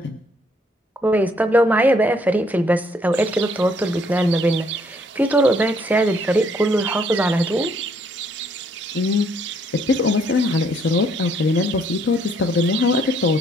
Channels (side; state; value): both; normal; correlation 0.67